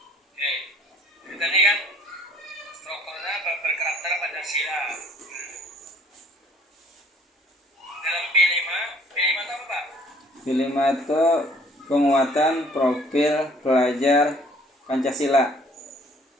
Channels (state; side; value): normal; both; correlation 0.56